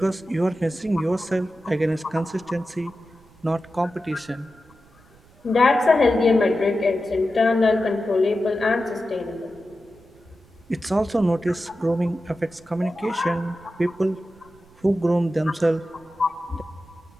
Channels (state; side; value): noise; right; rumble, 27 dB below the sound